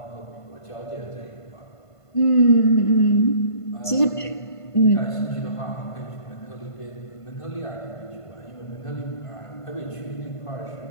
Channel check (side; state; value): right; late; 1.5 ms